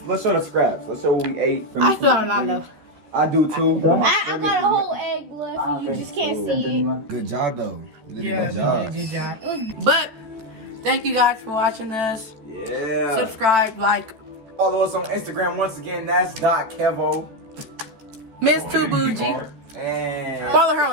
the scraps. Let's show what we ate. I still got a lot left. I do too. I got a whole egg left and you just can't see it. Good job though. You did a good you job. did a good job. But thank you guys for watching us. Yeah. Subscribe, like. Follow us on Instagram once again. That's .kevo. Miss Too Bougie. And Follow her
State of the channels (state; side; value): late; left; 13 ms